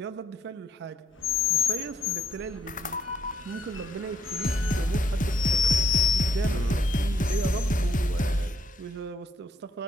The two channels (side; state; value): both; normal; correlation 0.73